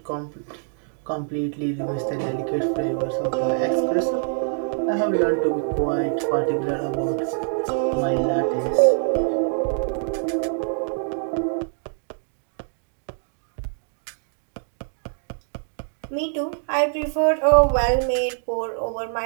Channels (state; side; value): silent; left; digital silence